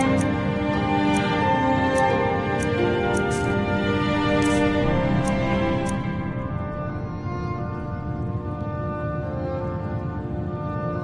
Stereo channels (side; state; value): both; identical; correlation 1.00